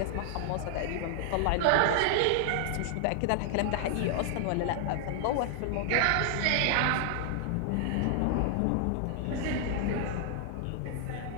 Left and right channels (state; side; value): different; both; correlation 0.00